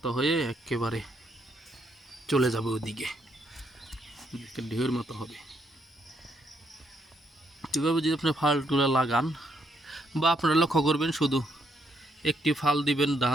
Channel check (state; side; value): normal; both; correlation 0.75